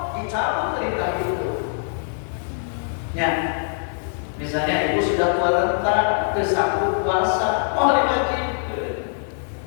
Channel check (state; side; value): silent; right; digital silence